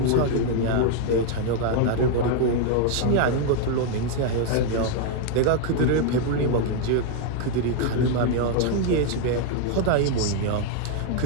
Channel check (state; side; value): different; both; correlation 0.00